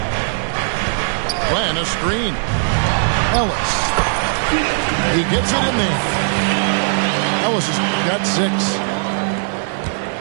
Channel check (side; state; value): left; silent; 60 dB below the other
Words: Plan a screen. Ellis. He gets it in there. Ellis has got 6.